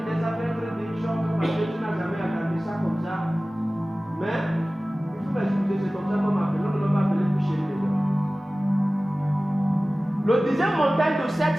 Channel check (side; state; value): both; normal; correlation 0.97